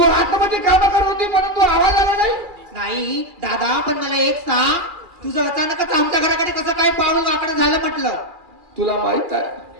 आतमध्ये काम करत होती म्हणून तू आवाज आला नाही? नाही दादा, पण मला एक सांग, तुझं अचानकच आमच्या घराकडे कसं काय पाऊल वाकडं झालं म्हटलं. तुला माहित आहे,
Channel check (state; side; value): late; left; 2.4 ms